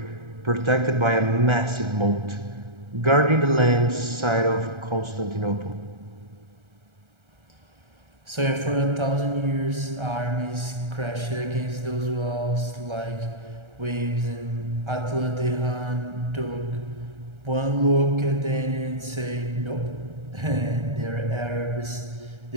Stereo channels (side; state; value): left; late; 1.3 ms